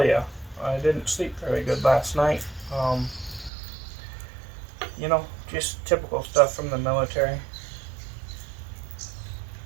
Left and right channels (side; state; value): left; drops out; at 3.5 s